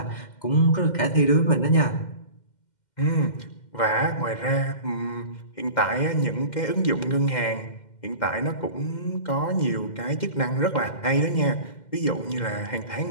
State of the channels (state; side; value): late; right; 2.1 ms